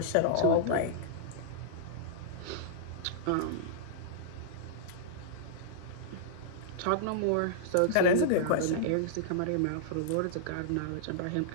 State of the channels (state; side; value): different; both; correlation -0.02